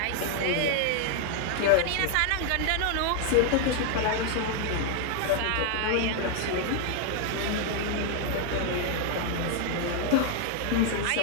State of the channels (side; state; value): both; different; correlation 0.00